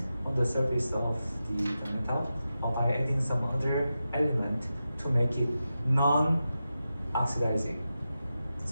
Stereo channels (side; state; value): both; inverted; correlation -0.91